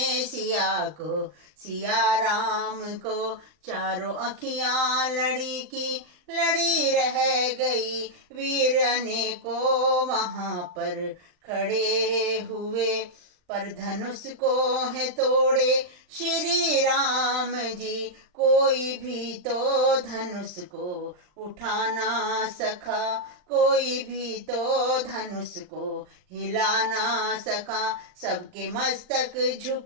सिया को, सिया राम को, चारों अखियां लड़ी की लड़ी रह गई। वीर अनेकों वहां पर खड़े हुए, पर धनुष को है तोड़े श्री राम जी। कोई भी तो धनुष को उठा ना सका, कोई भी तो धनुष को हिला ना सका, सबके मस्तक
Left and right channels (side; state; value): left; late; 39 ms